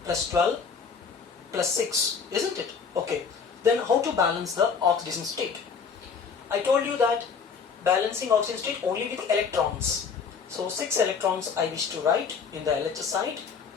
plus 12 plus 6, isn't it? Okay. Then how to balance the oxidation state? I told you that balancing oxidation state only with electrons. So 6 electrons I wish to write in the LHS side,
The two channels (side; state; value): right; quieter; 5.9 dB